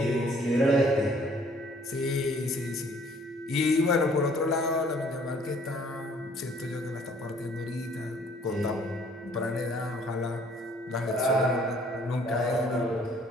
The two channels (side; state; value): both; normal; correlation 0.59